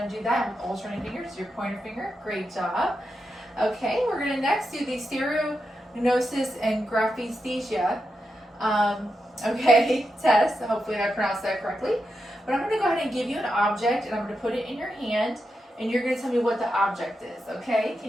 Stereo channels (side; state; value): both; normal; correlation 0.87